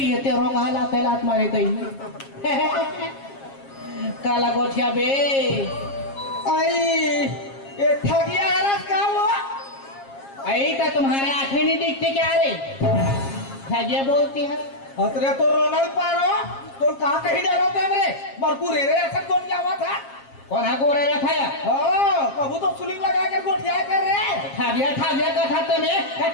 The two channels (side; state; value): right; late; 7.4 ms